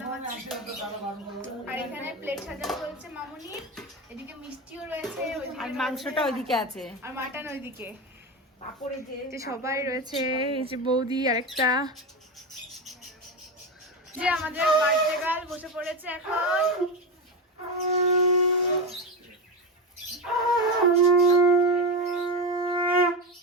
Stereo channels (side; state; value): both; normal; correlation 0.17